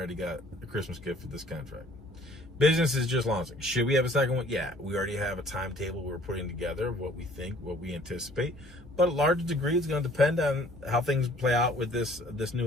got a Christmas gift for this contract. Business is just launching. Should we have a second one? Yeah, we already have a timetable we're putting together of what we think, what we anticipate. But a large degree, it's going to depend on how things play out with this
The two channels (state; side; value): normal; both; correlation 0.56